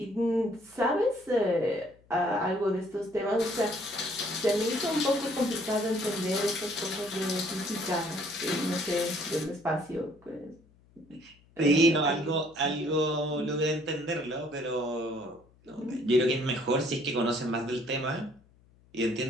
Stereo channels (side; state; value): left; noise; hum, 29 dB below the sound